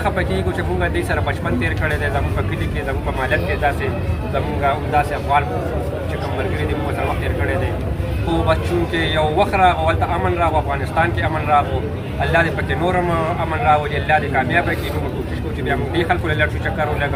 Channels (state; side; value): identical; both; correlation 1.00